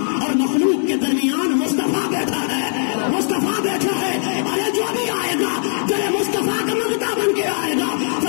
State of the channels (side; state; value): right; silent; 66 dB below the other